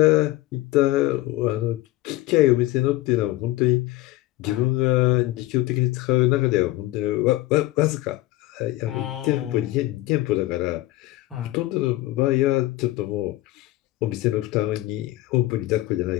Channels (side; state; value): right; quieter; 17.5 dB